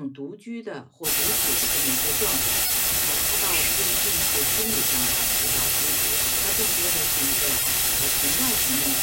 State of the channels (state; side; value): identical; both; correlation 1.00